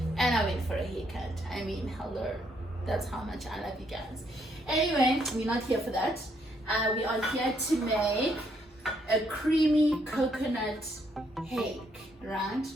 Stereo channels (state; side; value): normal; both; correlation 0.73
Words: And I went for a haircut. I mean, hello. That's how much I love you guys. Anyway, we're not here for that. We are here to make a creamy coconut hake, right?